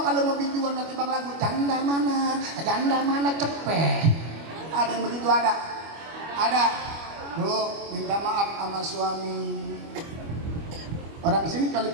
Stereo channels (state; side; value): late; left; 25 ms